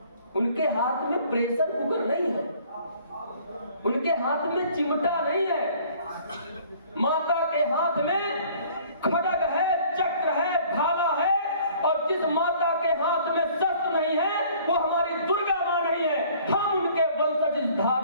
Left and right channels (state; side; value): inverted; both; correlation -0.55